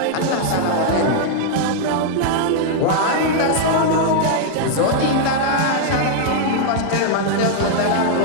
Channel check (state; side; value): different; both; correlation -0.01